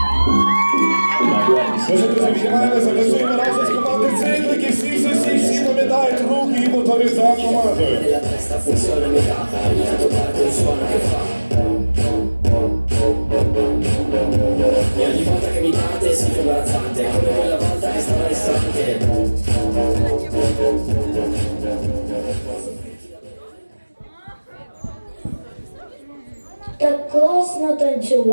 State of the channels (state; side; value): inverted; both; correlation -1.00